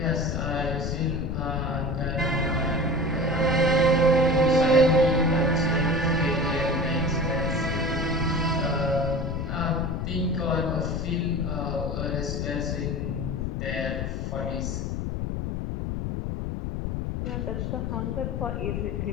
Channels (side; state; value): left; noise; rumble, 2 dB below the sound